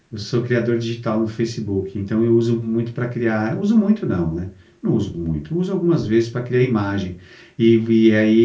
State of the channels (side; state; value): both; identical; correlation 1.00